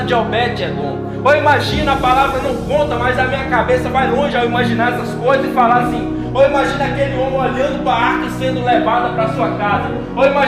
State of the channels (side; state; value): both; identical; correlation 1.00